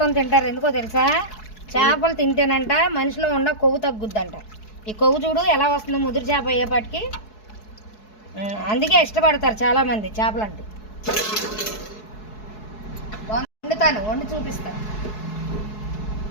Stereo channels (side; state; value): right; late; 4.7 ms